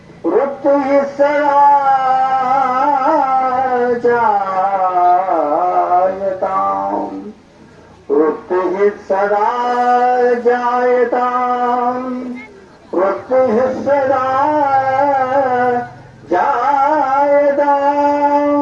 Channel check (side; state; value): both; identical; correlation 1.00